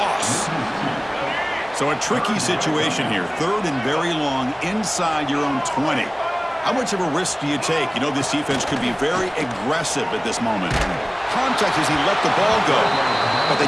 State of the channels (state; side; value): identical; both; correlation 1.00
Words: So a tricky situation here. 3rd and very long inside your own 20. How much of a risk do you take? You know this defense could be very aggressive at this moment. Contact as he let the ball go, but they